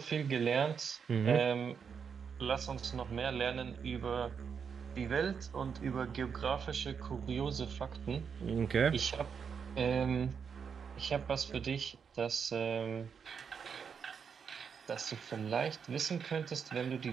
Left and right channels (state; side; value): quieter; left; 6.6 dB